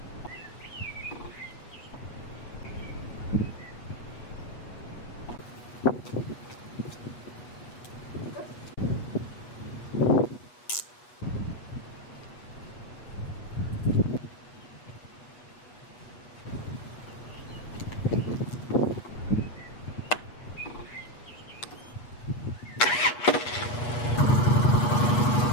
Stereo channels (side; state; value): right; late; 8.3 ms